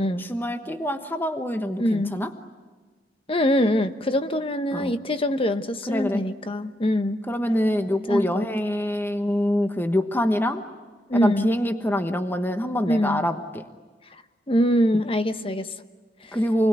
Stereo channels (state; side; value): normal; both; correlation 0.80